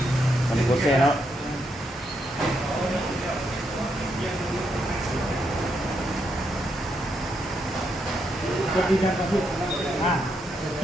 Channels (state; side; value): normal; both; correlation 0.79